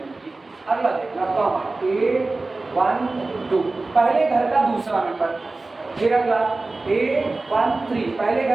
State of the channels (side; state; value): left; quieter; 3.3 dB